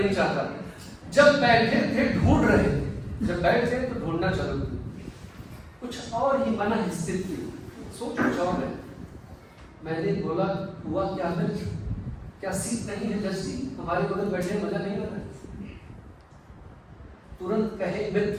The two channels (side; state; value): both; identical; correlation 1.00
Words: चाहता। जब बैठे थे ढूंढ रहे, जब बैठे तो ढूंढना चलो, कुछ और ही मन स्थित थी, सोच कुछ और है। मैंने बोला, हुआ क्या मित्र, क्या सीट नहीं है जज जी, हमारे बगल बैठे मजा नहीं आ रहा? तुरंत